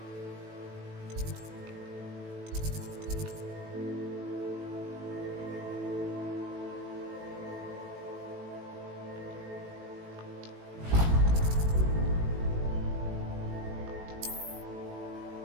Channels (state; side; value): late; left; 18 ms